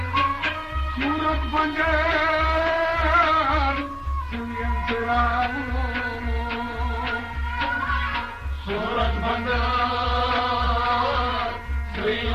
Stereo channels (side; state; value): both; identical; correlation 1.00